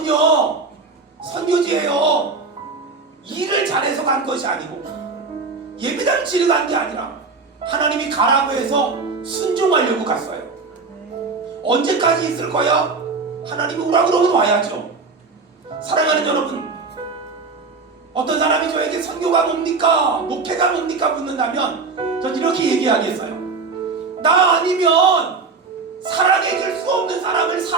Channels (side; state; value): left; quieter; 4.4 dB